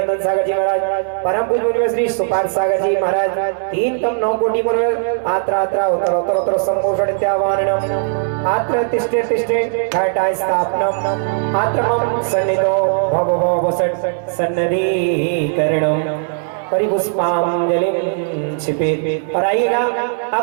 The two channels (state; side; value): silent; left; 67 dB below the other